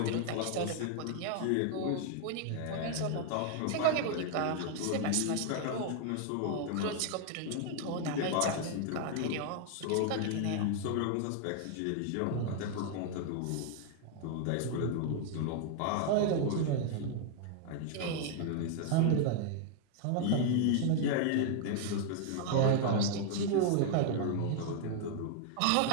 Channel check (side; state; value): both; different; correlation 0.00